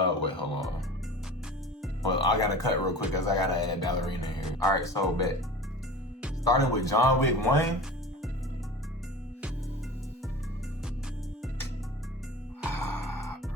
hold on. Well, I gotta cut real quick because I gotta add Ballerina here. All right, so bet. Starting with John Wick 1.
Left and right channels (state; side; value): normal; both; correlation 0.36